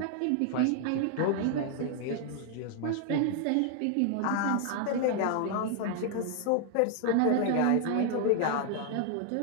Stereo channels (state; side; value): different; both; correlation 0.00